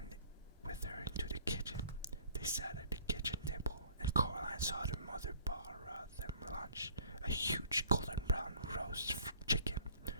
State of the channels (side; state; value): both; inverted; correlation -0.55